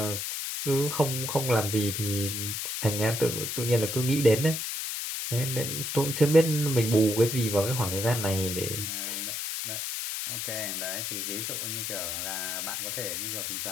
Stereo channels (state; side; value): noise; left; hiss, 3 dB below the sound